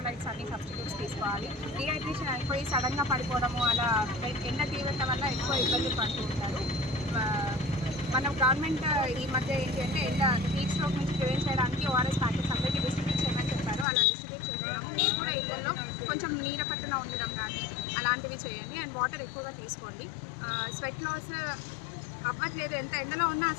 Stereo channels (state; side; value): drops out; right; at 13.9 s